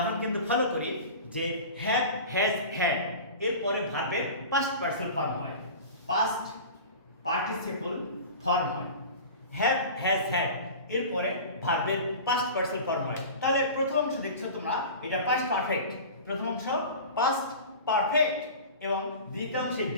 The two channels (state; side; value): inverted; both; correlation -0.36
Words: কিন্তু ফলো করি যে হ্যাভ, হ্যাজ, হ্যাড এরপরে ভার্বের পাস্ট পার্সন ফর্ম হয়, পাস্ট পার্টিসিপল ফর্ম হয়। হ্যাভ, হ্যাজ, হ্যাড এরপরে ভার্বের পাস্ট পার্সন ফর্ম হয়। তাহলে প্রথম অংশ দেখছো তোমরা, এটা পাস্ট পারফেক্ট, প্রথম অংশ পাস্ট পারফেক্ট এবং দ্বিতীয়াংশ